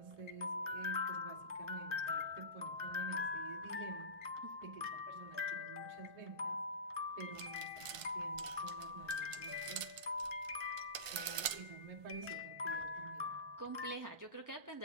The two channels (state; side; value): late; left; 1.5 ms